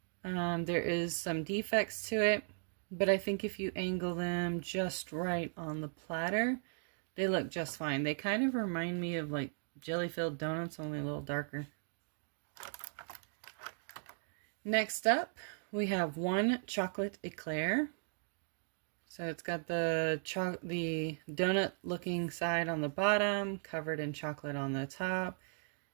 There is some defects to it, but I think if you angle them just right on the platter, they look just fine. They kind of remind me of like jelly-filled donuts, only a little darker. Next up, we have 1 chocolate eclair. So it's got the donut looking side on the bottom, covered in chocolate on the top.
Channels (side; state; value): left; silent; 53 dB below the other